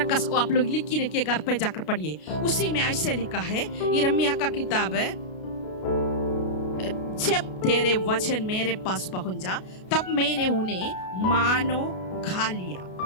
आप लोग लिख के रखिए, घर पे जाकर पढ़िए। उसी में ऐसे लिखा है, यिर्मयाह का किताब है, जब तेरे वचन मेरे पास पहुंच जा तब मैंने उन्हें मानो खा लिया,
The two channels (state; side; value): late; right; 33 ms